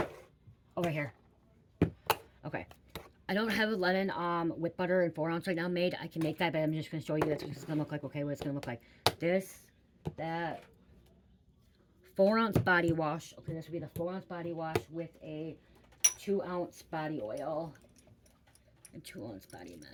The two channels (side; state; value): both; identical; correlation 1.00